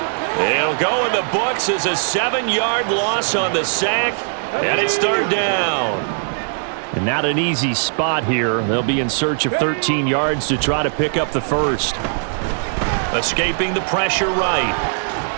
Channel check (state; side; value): silent; left; digital silence